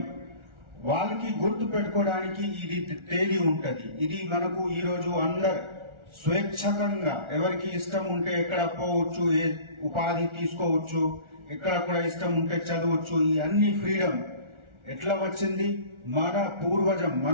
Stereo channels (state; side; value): late; left; 1.4 ms